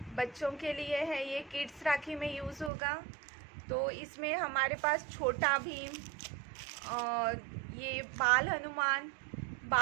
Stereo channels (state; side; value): drops out; left; at 2.7 s